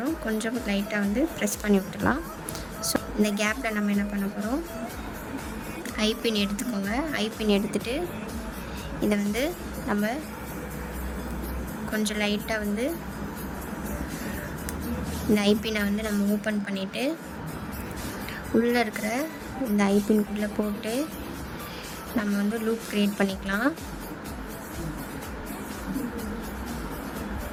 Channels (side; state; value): both; identical; correlation 1.00